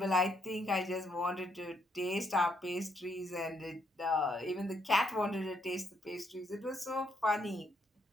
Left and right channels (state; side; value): normal; both; correlation 0.74